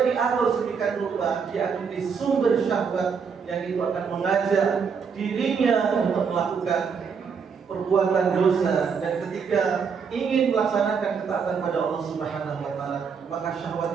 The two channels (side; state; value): left; quieter; 6.1 dB